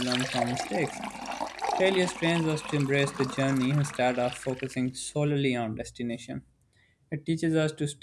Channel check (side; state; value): both; identical; correlation 1.00